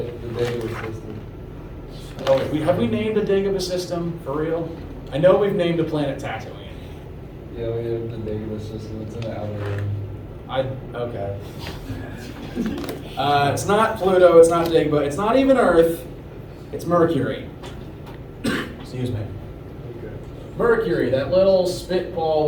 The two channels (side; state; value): both; identical; correlation 1.00